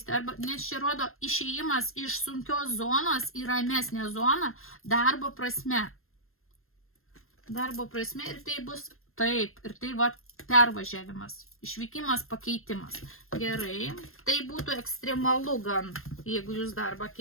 nes čia rodo išėjimas iš sunkios zonos į ramesnę zoną darbo prasme. Darbo prasme ir tai bus taip, ir tai va pervažiavimas, išvykimas, pakeitimas. Gerai, tai būtų ekstremalu gan, jeigu jūs darbą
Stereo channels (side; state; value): right; late; 0.61 ms